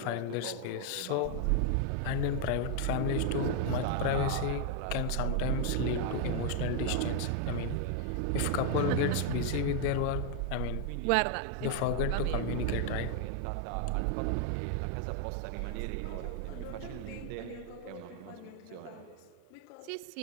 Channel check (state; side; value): different; both; correlation 0.00